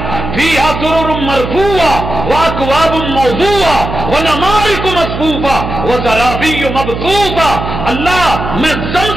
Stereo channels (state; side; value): noise; right; hum, 6 dB below the sound